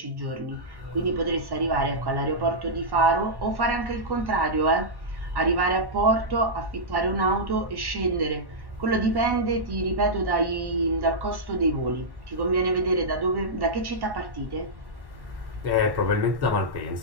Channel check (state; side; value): late; left; 1.1 ms